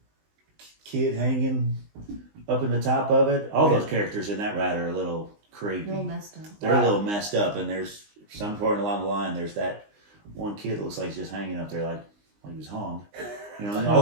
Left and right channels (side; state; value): left; late; 19 ms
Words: kid hanging up in the top of it. All those characters in that ride are a little creepy. A little messed up. They're a little messed up, and there's some point along the line. There's that one kid that looks like he's just hanging up there like he was hung. And all